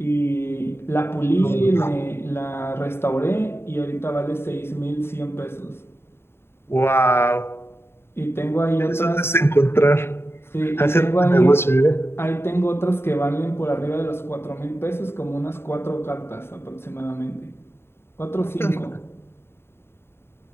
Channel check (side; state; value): right; late; 0.11 ms